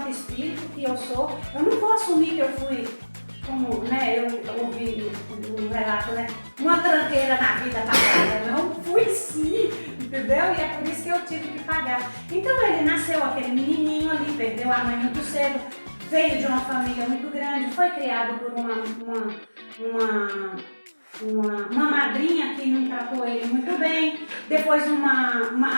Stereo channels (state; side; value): inverted; both; correlation -1.00